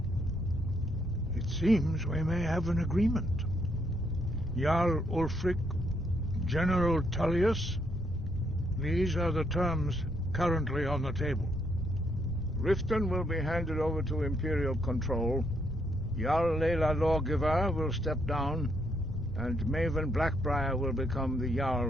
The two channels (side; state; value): left; noise; rumble, 10 dB below the sound